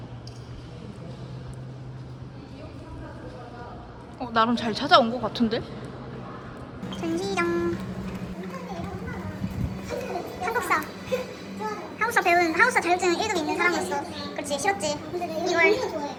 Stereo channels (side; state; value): both; identical; correlation 1.00